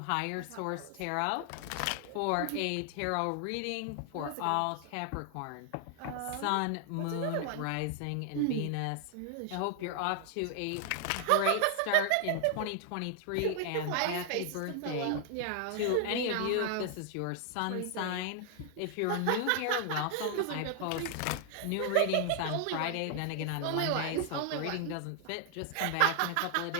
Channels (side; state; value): both; different; correlation 0.00